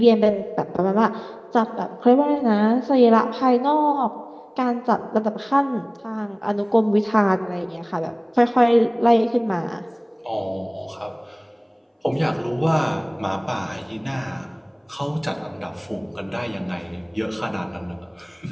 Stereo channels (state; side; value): identical; both; correlation 1.00